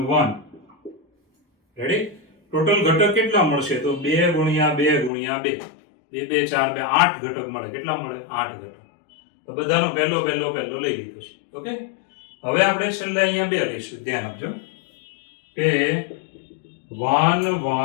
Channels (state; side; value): drops out; right; at 5.1 s